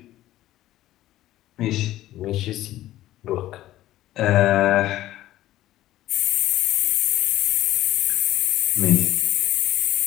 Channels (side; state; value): right; quieter; 14.6 dB